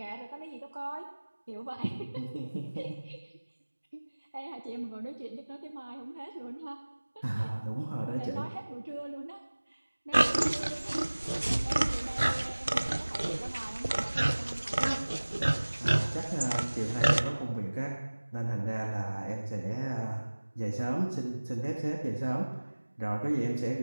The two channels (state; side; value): inverted; both; correlation -1.00